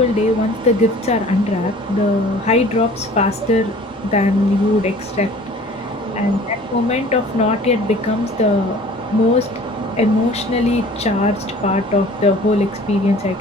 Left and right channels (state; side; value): normal; both; correlation 0.48